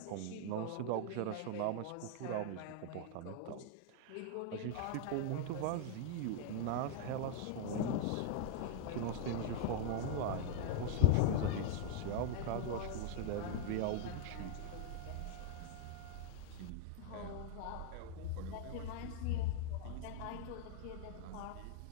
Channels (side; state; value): both; different; correlation -0.01